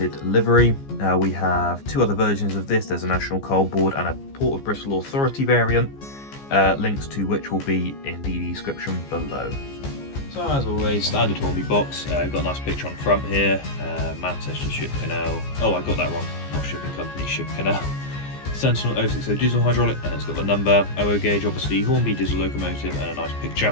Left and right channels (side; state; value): right; late; 15 ms